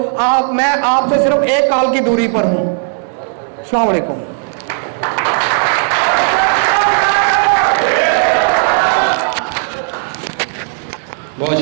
मैं आपसे सिर्फ एक कॉल की दूरी पर हूँ। अस्सलाम वालेकुम। बहुत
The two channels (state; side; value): silent; left; 56 dB below the other